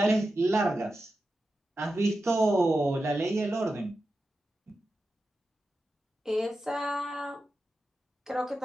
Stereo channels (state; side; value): normal; both; correlation 0.91